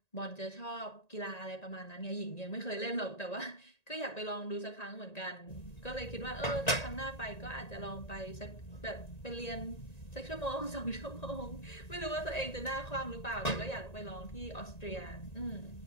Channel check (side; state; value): right; late; 1.9 ms